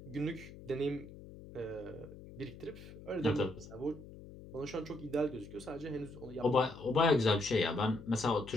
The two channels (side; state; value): left; noise; hum, 16 dB below the sound